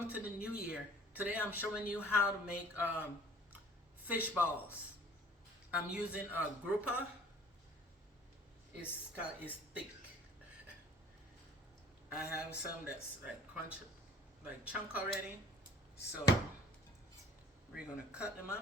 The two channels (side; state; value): both; normal; correlation 0.52